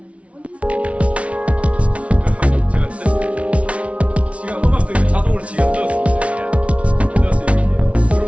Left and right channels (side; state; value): left; late; 0.063 ms